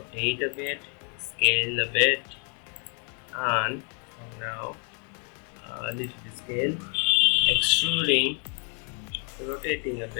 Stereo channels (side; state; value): right; quieter; 39.7 dB